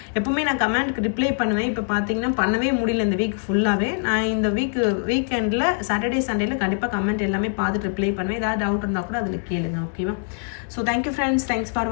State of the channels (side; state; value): right; silent; 62 dB below the other